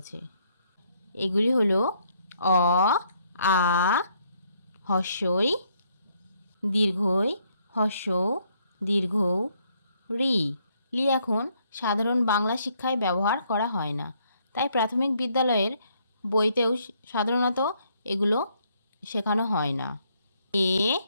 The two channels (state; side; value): inverted; both; correlation -0.70